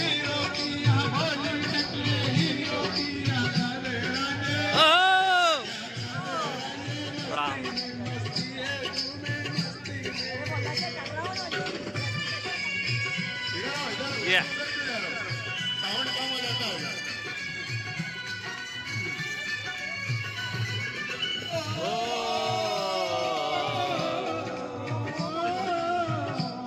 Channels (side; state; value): both; identical; correlation 1.00